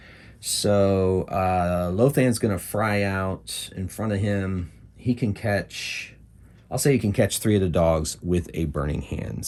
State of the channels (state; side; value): identical; both; correlation 1.00